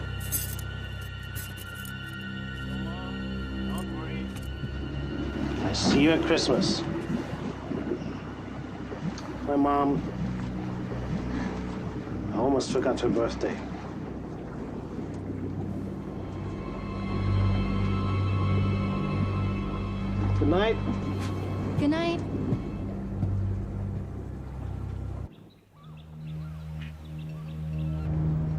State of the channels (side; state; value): both; identical; correlation 1.00